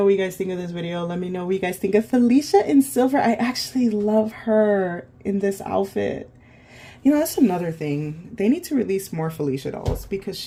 what you guys think of this video. Let me know what you guys think of Felicia in silver. I actually love her in this outfit. You know, that's another thing. They need to release more Felicia dolls because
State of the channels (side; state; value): both; identical; correlation 1.00